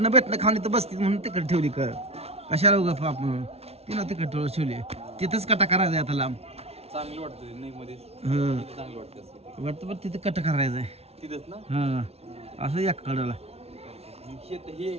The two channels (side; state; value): left; late; 0.30 ms